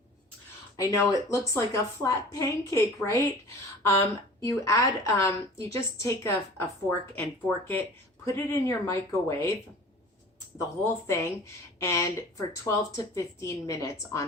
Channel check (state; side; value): normal; both; correlation 0.43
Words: I know it looks like a flat pancake, right? You just take a fork and fork it, put it in your microwave, the whole thing, and for 12 to 15 minutes